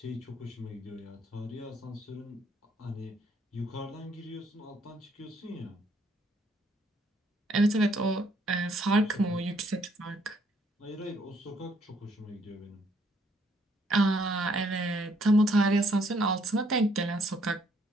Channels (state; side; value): normal; both; correlation 0.67